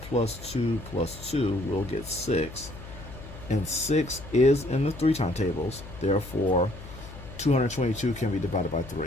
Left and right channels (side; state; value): left; noise; hum, 14 dB below the sound